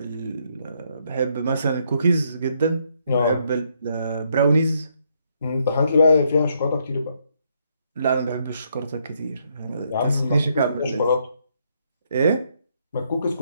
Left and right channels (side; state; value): both; inverted; correlation -0.73